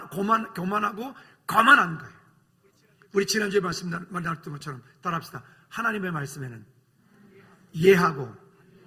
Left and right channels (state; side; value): identical; both; correlation 1.00